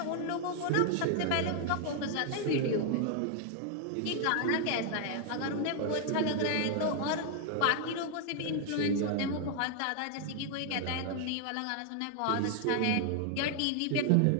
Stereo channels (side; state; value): both; different; correlation 0.00